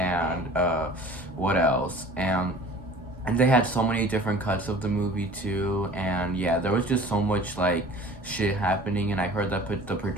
what else? And they had so many different cuts of the movie too, and yeah, there was just so much like shit happening. And I heard that the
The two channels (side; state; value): both; normal; correlation 0.45